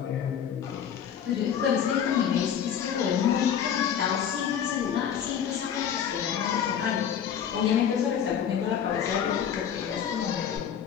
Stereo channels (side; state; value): right; quieter; 8.5 dB